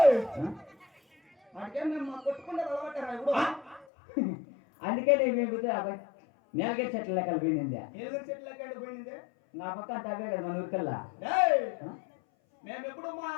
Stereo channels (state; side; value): drops out; right; at 3.9 s